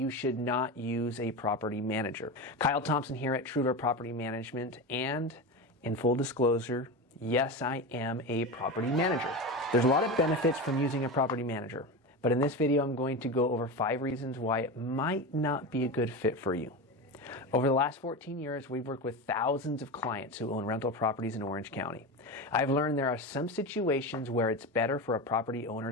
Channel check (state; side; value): normal; both; correlation 0.22